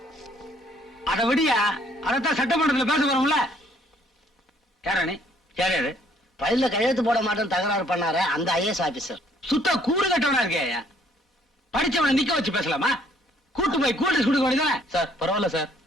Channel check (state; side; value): normal; both; correlation 0.63